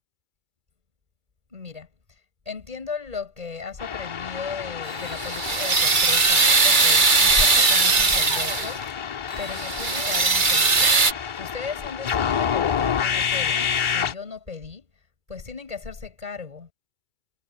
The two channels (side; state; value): left; late; 2.3 ms